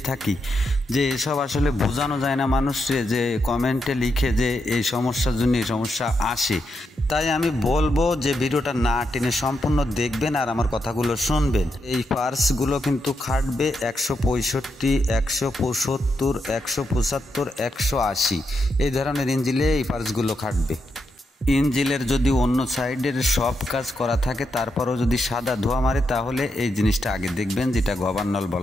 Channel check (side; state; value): both; normal; correlation 0.83